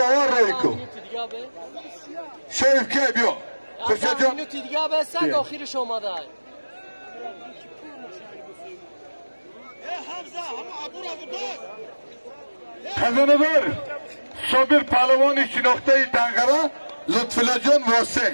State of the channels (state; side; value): inverted; both; correlation -1.00